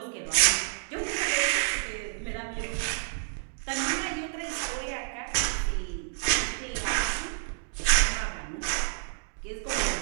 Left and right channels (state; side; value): silent; left; digital silence